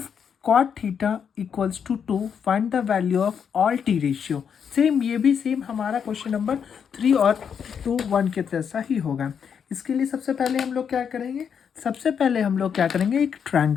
cot theta equals to 2 find the value of all T ratio. Same ये भी सेम हमारा क्वेश्चन नंबर 3 और 2 1 के जैसा ही होगा। इसके लिए सबसे पहले हम लोग क्या करेंगे, एक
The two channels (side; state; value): right; quieter; 7.3 dB